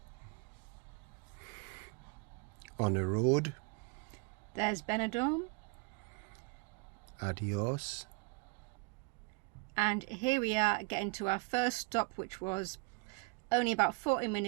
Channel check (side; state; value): left; quieter; 30.6 dB